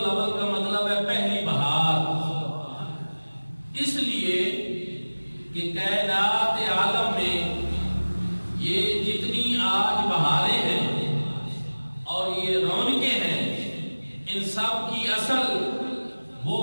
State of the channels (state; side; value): inverted; both; correlation -1.00